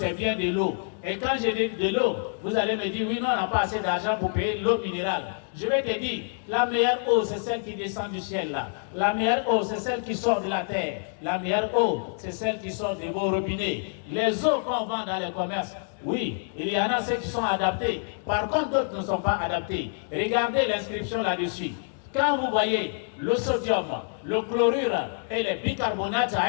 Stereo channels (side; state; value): right; silent; digital silence